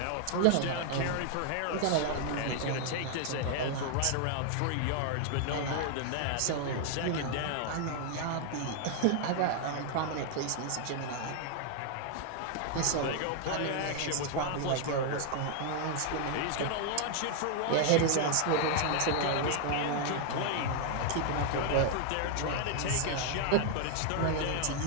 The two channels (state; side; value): different; both; correlation 0.00